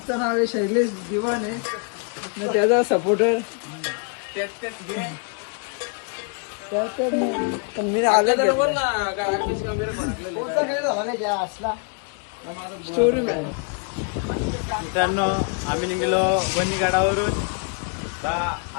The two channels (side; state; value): right; quieter; 39.0 dB